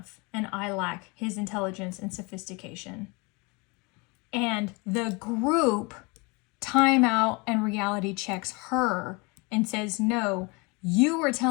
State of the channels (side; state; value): right; quieter; 28.4 dB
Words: and I lack his intelligence and sophistication. And the group time out and reality checks her and says, no, you were